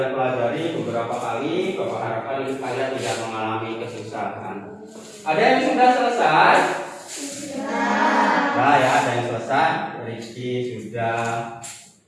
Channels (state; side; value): identical; both; correlation 1.00